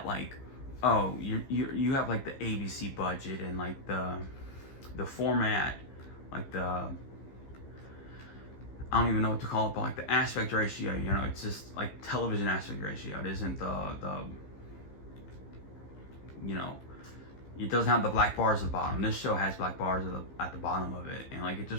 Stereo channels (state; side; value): late; right; 15 ms